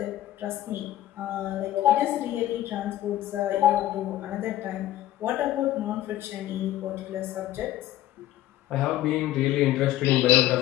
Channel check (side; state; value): right; quieter; 13.9 dB